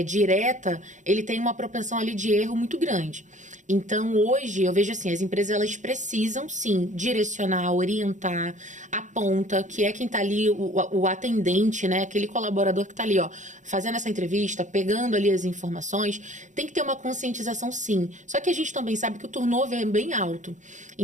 direta, ele tem uma propensão ali de erro muito grande. Então, hoje, eu vejo assim, as empresas, elas precisam, sim, direcionar, orientar, a ponta, que é quem está ali, o atendente, né? Aquele colaborador que está ali, ó, fazendo essa entrevista, pegando ali as informações. Tem que ter uma conscientização, sim. Só que a gente também sabe que o turnover é bem alto.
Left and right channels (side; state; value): left; late; 0.36 ms